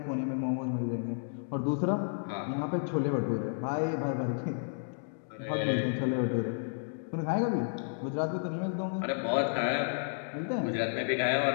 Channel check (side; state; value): right; silent; digital silence